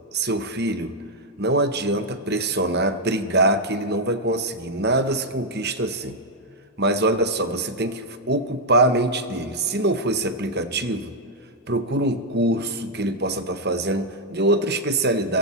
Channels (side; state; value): both; normal; correlation -0.01